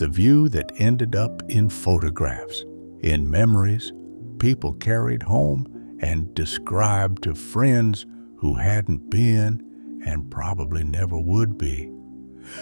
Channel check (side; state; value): both; inverted; correlation -1.00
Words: view that ended up in photographs, in memories people carried home and described to friends who hadn't been and probably never would be.